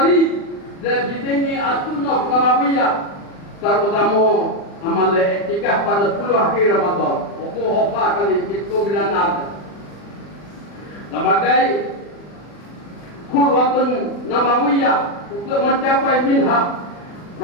dan didengi As-Sunnah Nabawiyah, terutama amal iktikaf pada 10 akhir Ramadan. Hofa kali itu bila ada. Sebagai khulwatun Nabawiyah untuk mencapai minhaj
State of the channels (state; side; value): late; right; 40 ms